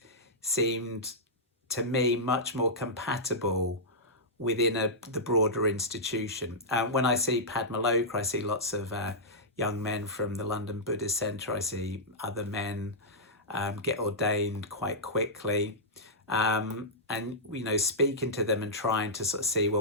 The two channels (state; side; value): normal; both; correlation -0.11